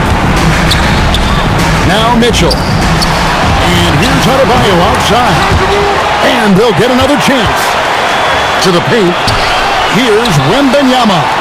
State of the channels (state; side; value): identical; both; correlation 1.00